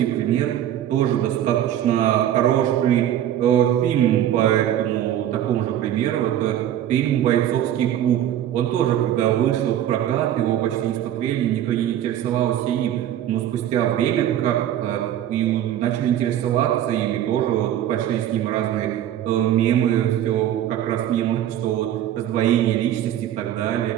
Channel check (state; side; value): quieter; left; 11.4 dB